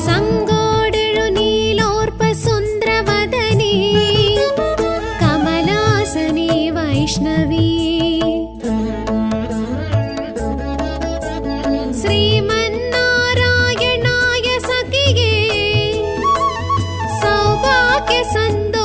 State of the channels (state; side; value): identical; both; correlation 1.00